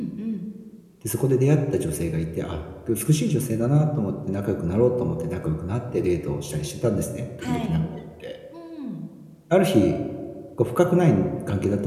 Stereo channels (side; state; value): both; identical; correlation 1.00